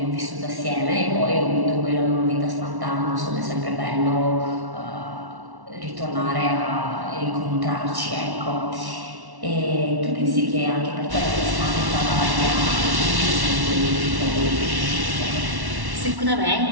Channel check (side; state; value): left; late; 1.1 ms